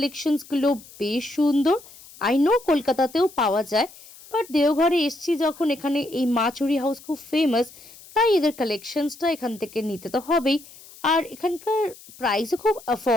বেশ সুন্দর। আই নো কলকাতাতেও পাওয়া যায়, বাট দেওঘরে এসছি যখন, এখানে এই মা চুরি হাউস খুব ফেমাস, তাই এদের কালেকশনসটা এখান থেকে নিতে তো হবেই। আর এখানকার প্রাইসও খুব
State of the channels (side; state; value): left; noise; hiss, 21 dB below the sound